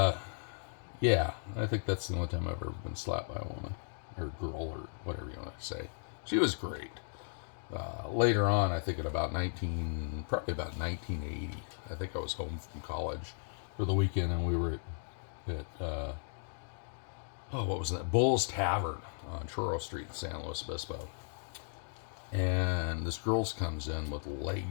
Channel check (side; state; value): right; silent; digital silence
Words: I think that's the only time I've ever been slapped by a woman, or girl, or whatever you want to say. She was great. Later on, I think probably about 1980, I think I was home from college for the weekend, and we were at what was that? Bull's Tavern on Churro Street in San Luis Obispo. And this girl comes in with